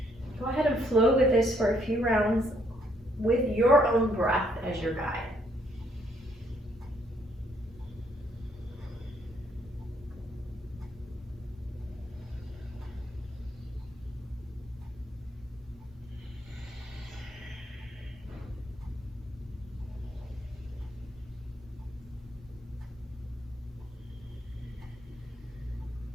Go ahead and flow with this for a few rounds with your own breath as your guide.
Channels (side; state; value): both; normal; correlation 0.70